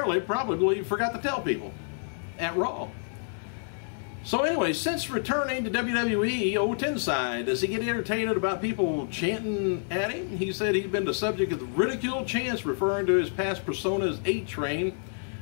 probably forgot to tell people at Raw. So anyway, since returning to WWE, old Tensai, does he get irritated about people chanting at him? He said he's been the subject of ridicule chants referring to his past personas A-Train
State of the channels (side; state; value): right; silent; digital silence